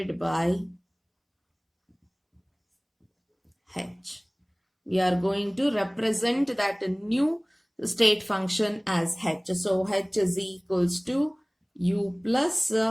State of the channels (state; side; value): identical; both; correlation 1.00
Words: by H. We are going to represent that new state function as H. So H is equals to U plus